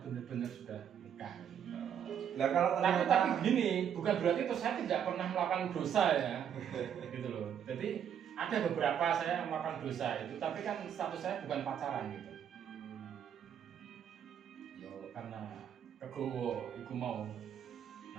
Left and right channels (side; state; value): left; quieter; 8.8 dB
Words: benar-benar sudah nikah. Nah, kalau tapi begini, bukan berarti itu saya tidak pernah melakukan dosa ya, gitu loh. Jadi ada beberapa saya melakukan dosa itu, tapi kan status saya bukan pacaran gitu. Yo karena kegowo, iku mau